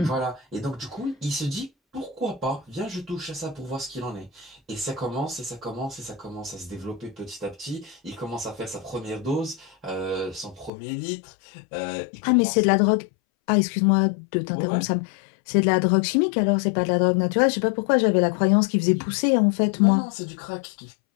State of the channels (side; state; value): right; drops out; at 10.7 s